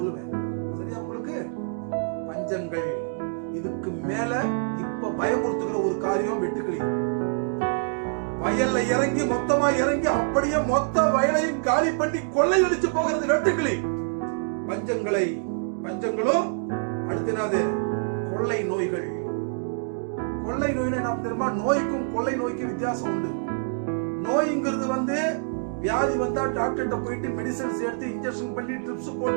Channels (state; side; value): silent; left; digital silence